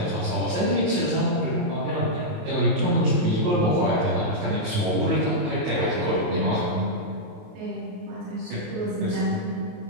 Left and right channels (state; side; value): late; left; 28 ms